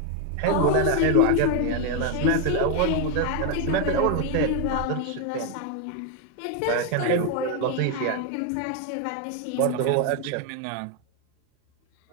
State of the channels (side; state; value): both; different; correlation 0.01